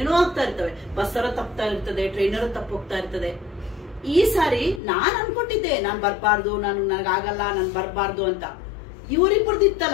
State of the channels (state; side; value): drops out; right; at 4.8 s